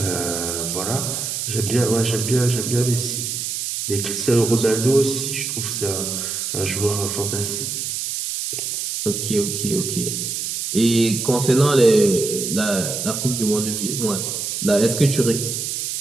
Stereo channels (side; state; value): right; noise; hiss, 3 dB below the sound